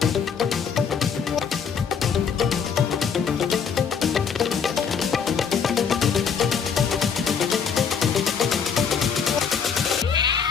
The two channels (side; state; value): right; quieter; 6.6 dB